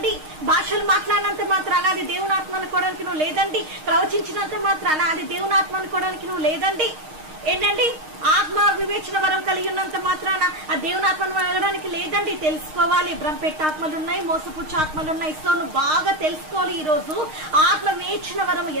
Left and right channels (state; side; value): late; left; 6.4 ms